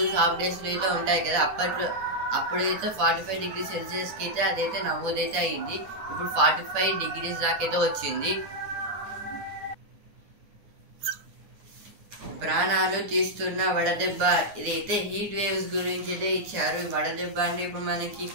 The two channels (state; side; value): late; left; 9.8 ms